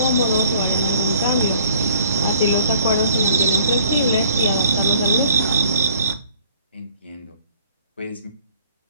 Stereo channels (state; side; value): inverted; both; correlation -0.56